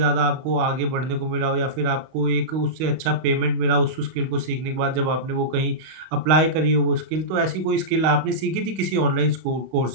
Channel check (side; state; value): left; late; 32 ms